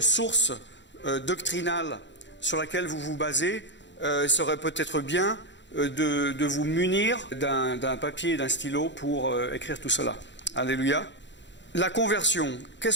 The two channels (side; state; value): right; late; 0.52 ms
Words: source doctrinale sur laquelle vous vous basez, il serait peut-être bien de vous munir d'un papier et d'un stylo pour écrire tout cela. Alléluia. La conversion.